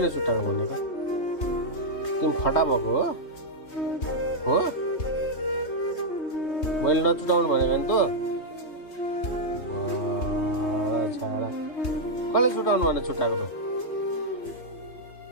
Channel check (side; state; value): right; late; 3.1 ms